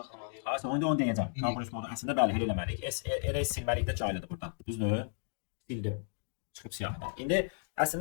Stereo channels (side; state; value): right; silent; digital silence